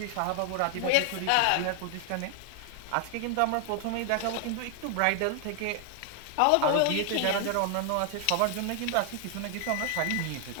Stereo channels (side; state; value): both; different; correlation 0.00